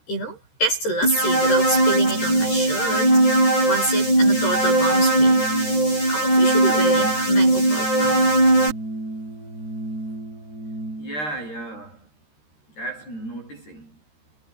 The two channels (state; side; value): late; right; 13 ms